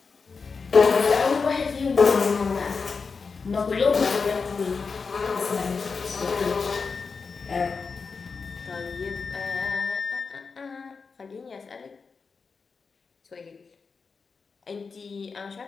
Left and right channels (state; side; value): quieter; right; 4.9 dB